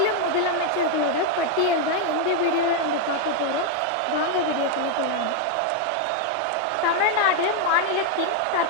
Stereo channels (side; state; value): both; different; correlation 0.01